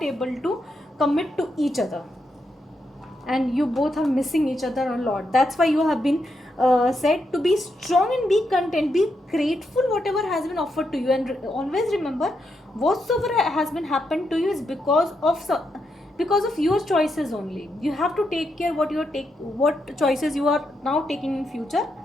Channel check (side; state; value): both; normal; correlation 0.82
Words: able to commit to each other, and you both are missing each other a lot. That's why you have been said to be strong and be content, be grateful whatever has been offered to you, and always remember, whatsoever has been happened to you is because of your choices only. You have to take care what choices you are now taking in future,